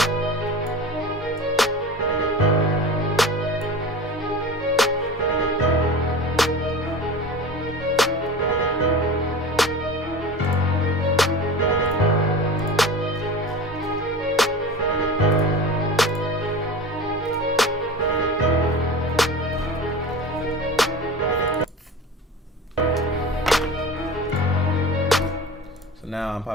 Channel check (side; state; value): both; normal; correlation 0.34